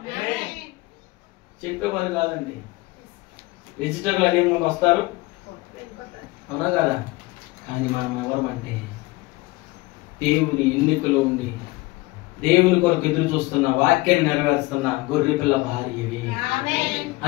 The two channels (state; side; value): quieter; right; 21.8 dB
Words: చెప్పేవారు కాదండి. విజిటర్లు అనే ముందు వస్తారు, అవునా కదా? కానీ మనం ఎవరమంటే దేవుని ఎన్నికలో ఉండి దేవుని కొరకు ఎదురు చూస్తున్న, వాక్యాన్ని నెరవేరుస్తున్న గొర్రెపిల్ల భార్యవి.